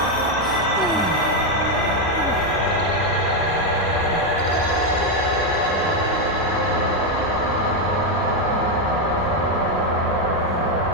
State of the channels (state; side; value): normal; both; correlation 0.05